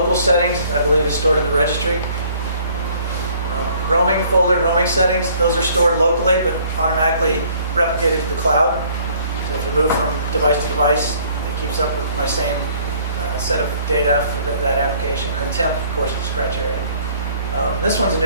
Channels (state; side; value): inverted; both; correlation -0.58